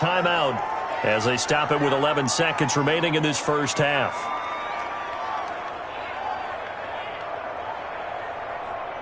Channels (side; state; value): both; identical; correlation 1.00